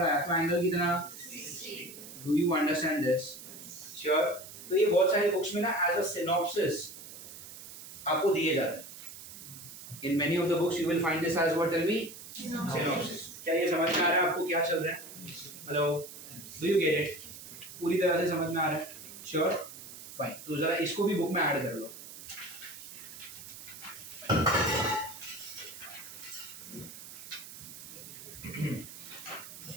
आया तो एंगल कितना, do you understand this? Sure? तो ये बहुत सारी बुक्स में ना एज अ सिनॉप्सिस आपको दिए जाते हैं। In many of the books you will find this as what, tell me, synopsis. क्या ये समझ में आ रहा है आपको क्या चल रहा है? Hello, do you get it? पूरी तरह से समझ में आ रहा है? श्योर? फाइन, तो जरा इसको भी बुक में ऐड कर लो।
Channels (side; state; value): right; noise; hiss, 14 dB below the sound